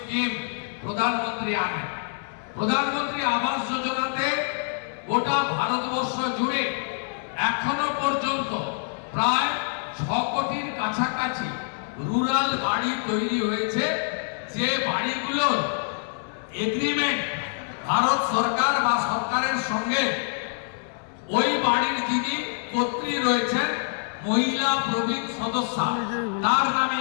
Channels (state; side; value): silent; right; 61 dB below the other